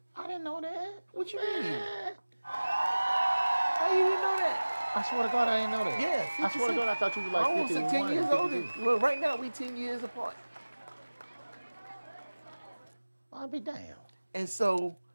I didn't know that. What you mean? How you didn't know that? I swear to God, I didn't know that. Yeah, I swear to 56. God, I thought you were like I almost 51, 10 years older. 52. Well, right now we 10 years apart. I'll be damned. And so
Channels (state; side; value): inverted; both; correlation -1.00